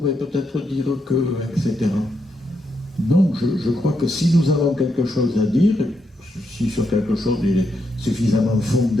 peut-être dire que, etc. Non, je crois que si nous avons quelque chose à dire, si sur quelque chose il est suffisamment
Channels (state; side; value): normal; both; correlation 0.80